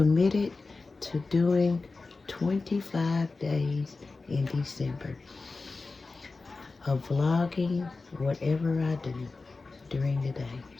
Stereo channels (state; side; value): quieter; right; 3.8 dB